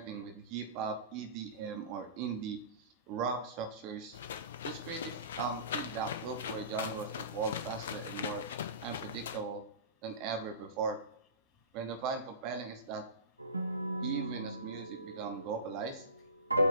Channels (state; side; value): inverted; both; correlation -0.32